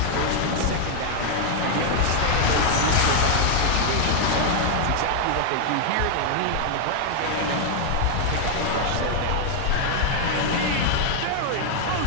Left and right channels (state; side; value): different; both; correlation 0.00